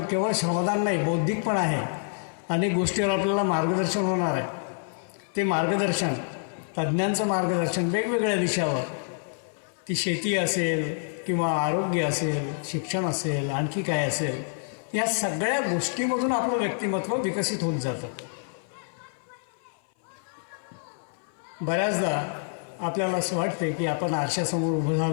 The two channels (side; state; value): right; silent; 58 dB below the other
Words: केवळ श्रमदान नाही, बौद्धिक पण आहे. अनेक गोष्टीवर आपल्याला मार्गदर्शन होणार आहे. ते मार्गदर्शन, तज्ज्ञांचं मार्गदर्शन वेगवेगळ्या विषयावर, ती शेती असेल किंवा आरोग्य असेल, शिक्षण असेल, आणखी काय असेल, या सगळ्या गोष्टीमधून आपलं व्यक्तिमत्व विकसित होत जातं. बऱ्याचदा आपल्याला असं वाटतं की आपण आरशासमोर उभं